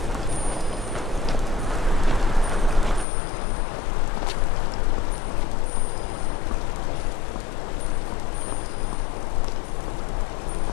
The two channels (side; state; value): right; drops out; at 3.1 s